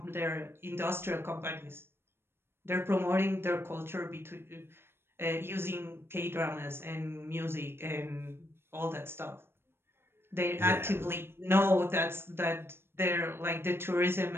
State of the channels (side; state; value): left; late; 0.11 ms